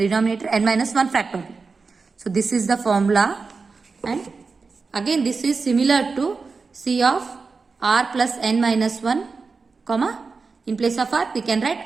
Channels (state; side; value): quieter; left; 4.5 dB